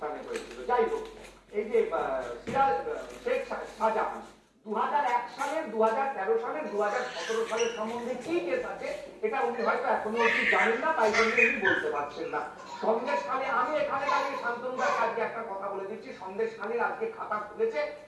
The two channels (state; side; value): identical; both; correlation 1.00